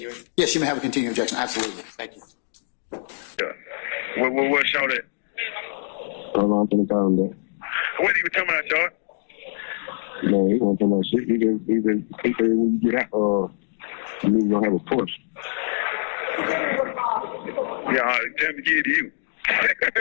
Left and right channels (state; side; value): quieter; right; 38.3 dB